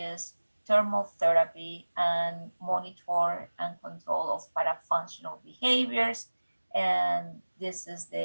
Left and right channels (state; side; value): inverted; both; correlation -1.00